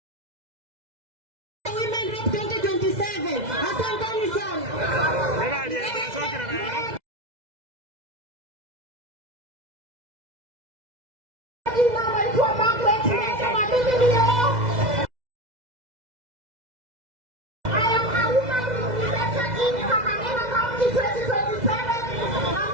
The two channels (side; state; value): left; late; 2.0 ms